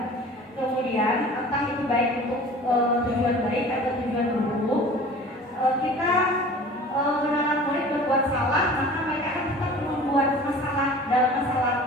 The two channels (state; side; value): normal; both; correlation 0.43